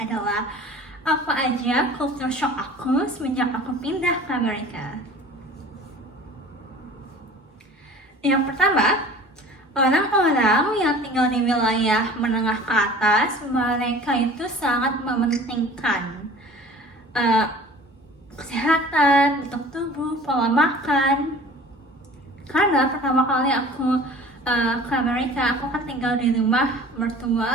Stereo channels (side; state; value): both; normal; correlation 0.44